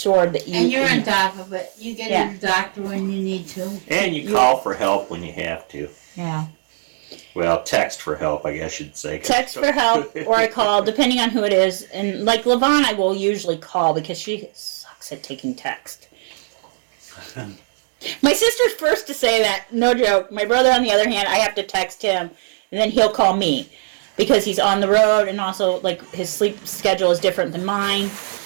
that you. And you're on top of it. You get Yeah. to the doctor when you need to. And you call for help when you have to. Yeah. Well, text for help, I guess you'd say. Text for help, or I call, depending on who it is. And like Levon, I will usually call because she sucks at taking text. My sister's first to say that, no joke. My brother, on the other hand, I have to text him, and then he'll call me because he's on the road, and also like his sleep schedule is different than mine.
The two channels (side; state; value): left; silent; digital silence